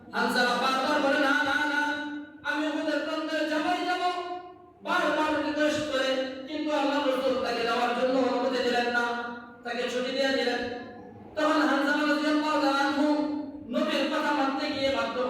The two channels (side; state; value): both; identical; correlation 1.00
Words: হানজালা বারবার বলে, না না না, আমি উহুদের প্রান্তে যাবই যাব, বারবার রিকোয়েস্ট করে, কিন্তু আল্লাহ রাসূল তাকে যাওয়ার জন্য অনুমতি দিলেন না, তাকে ছুটি দিয়ে দিলেন। তখন হানজালা রাদিয়াল্লাহু তাআলা আনহু নবীর কথা মানতে গিয়ে বাধ্য